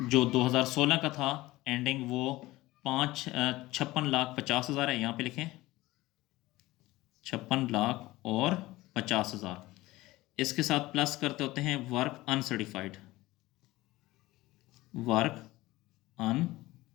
जो 2016 का था एंडिंग वो 56,50,000 है। यहाँ पे लिखें 56,50,000। इसके साथ प्लस करते होते हैं वर्क अनसर्टिफाइड, वर्क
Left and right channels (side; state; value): right; quieter; 18.5 dB